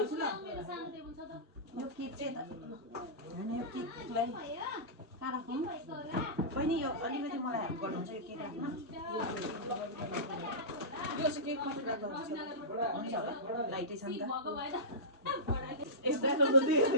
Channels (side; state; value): both; normal; correlation -0.17